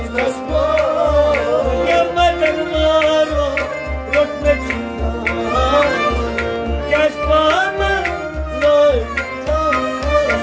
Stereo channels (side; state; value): both; identical; correlation 1.00